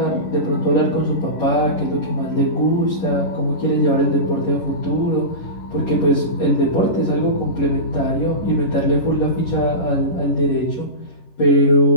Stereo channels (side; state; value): right; late; 11 ms